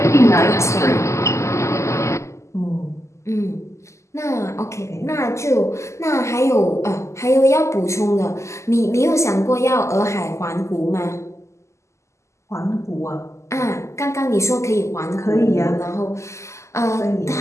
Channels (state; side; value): late; right; 0.14 ms